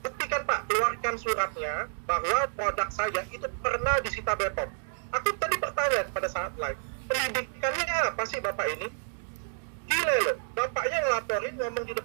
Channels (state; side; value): silent; left; digital silence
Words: Pak, keluarkan suratnya bahwa produk saya itu pernah disita BPOM. Aku tadi bertanya pada saat live, pendidikannya apa sih Bapak ini? Gila loh, bapaknya ngelaporin, ngomong di